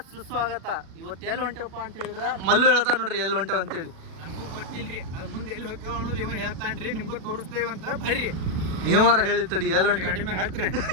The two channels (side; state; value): left; late; 37 ms